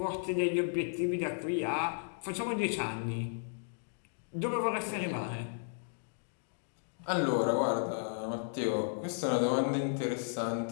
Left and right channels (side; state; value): right; silent; digital silence